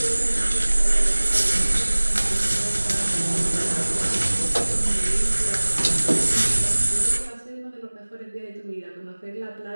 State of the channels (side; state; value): both; inverted; correlation -1.00